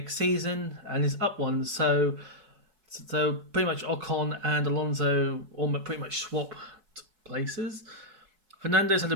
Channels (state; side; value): late; left; 4.7 ms